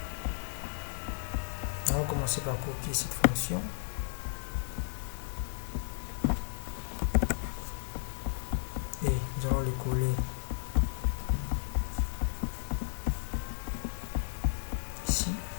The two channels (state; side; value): silent; right; digital silence